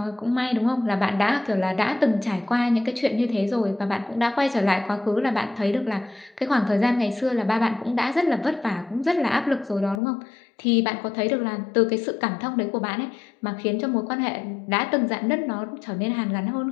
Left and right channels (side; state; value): right; drops out; at 10.0 s